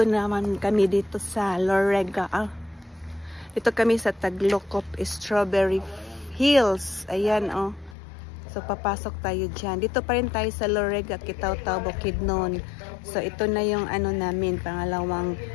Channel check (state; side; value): drops out; right; at 8.0 s